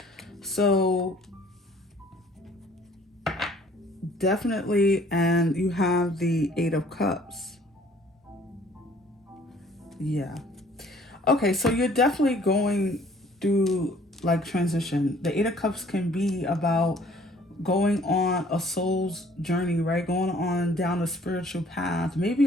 So definitely, and you have the Eight of Cups. Yeah. Okay, so you're definitely going through like transition. The Eight of Cups can be about going on a soul's journey, right? Going on down a spiritual path. Maybe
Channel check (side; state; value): both; normal; correlation 0.56